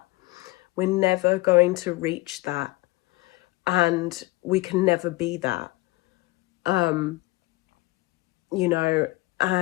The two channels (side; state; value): right; quieter; 20.8 dB